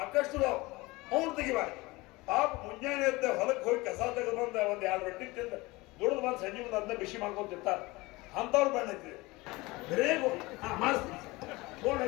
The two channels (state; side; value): quieter; right; 22.2 dB